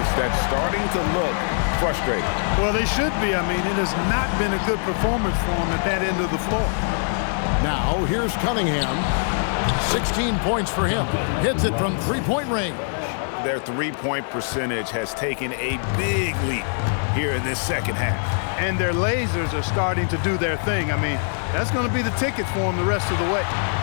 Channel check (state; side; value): silent; right; digital silence